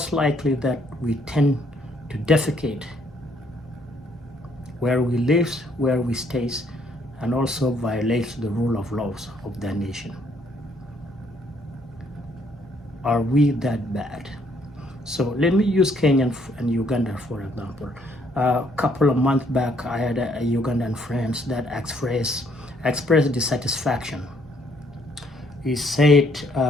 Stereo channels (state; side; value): normal; both; correlation 0.67